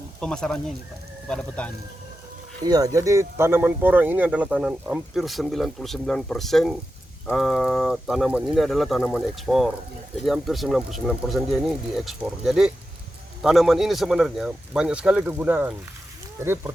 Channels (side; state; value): both; normal; correlation 0.91